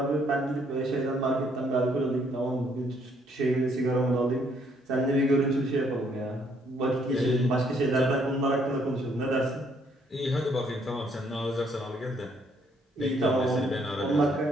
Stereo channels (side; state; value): both; normal; correlation 0.68